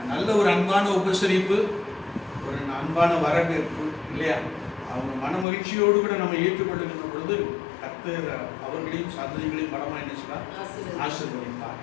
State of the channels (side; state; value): right; drops out; at 5.5 s